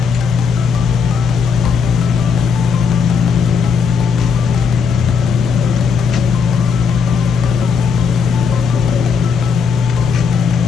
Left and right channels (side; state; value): right; quieter; 6.0 dB